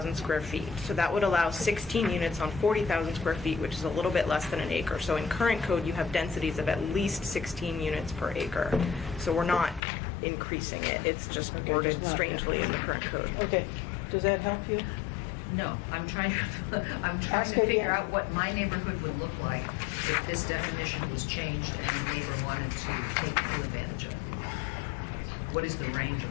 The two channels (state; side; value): drops out; right; at 9.8 s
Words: square feet. So that would allow 16 units on 40,000 square feet, which is a little bit less than an acre. So in current code, you have densities of at least 16 units per acre. So we're not increasing it. It's just Okay, worded just not- strangely in the current code. Okay, does that help you? No, I'm trying Ask to again. figure out what my neighborhood would look like if this definition was changed and a neighbor wanted to take full advantage of it. What is the range